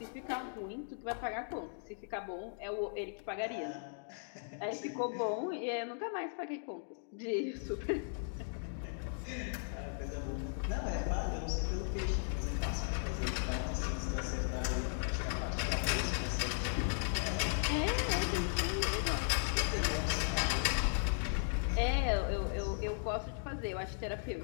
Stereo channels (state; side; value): silent; right; digital silence